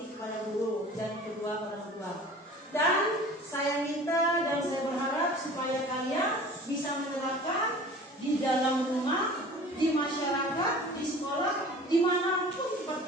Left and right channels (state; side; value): normal; both; correlation 0.43